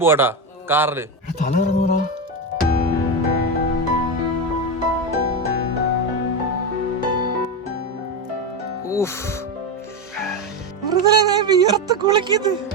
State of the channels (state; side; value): normal; both; correlation 0.13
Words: കാറില്. തല ഇറങ്ങൂടാ.